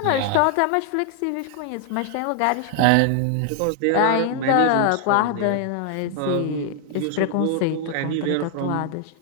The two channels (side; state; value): both; different; correlation 0.00